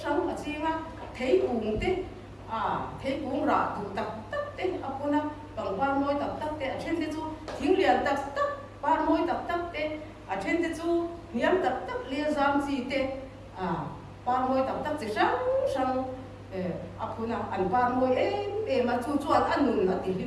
sáng ở chi mà thấy cuồng thế thấy cuồng rạ tụ tập thế apuna bằng ba môi tập thế ở trên thế chú tiếng liền tập ba môi tập thế ở trên thế chú niệm tập lia giam gì thế ba môi tập chỉ sáng apuna ăn ba môi mà chú ăn nụn là tí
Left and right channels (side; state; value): both; identical; correlation 1.00